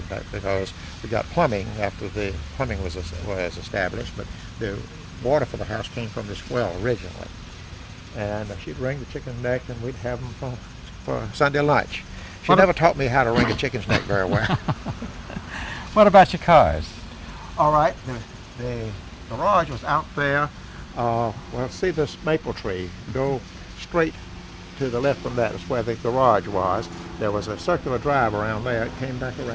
because we got plumbing after the plumbing was established, but the water for the house came from this well originally. And she'd ring the chicken neck, and we'd have them for Sunday lunch. She never taught me how to ring a chicken's neck very well. What about your cars? All right, the garage was out there. Well, see this maple tree? Go straight to the left from that. That's where the garage was. There was a circular drive around there. It came back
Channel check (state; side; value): identical; both; correlation 1.00